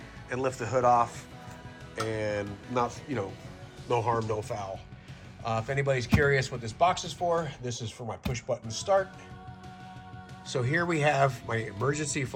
and lift the hood off. and not, no harm, no foul. If anybody's curious what this box is for, this is for my push button start. So here we have my emergency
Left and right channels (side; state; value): both; identical; correlation 1.00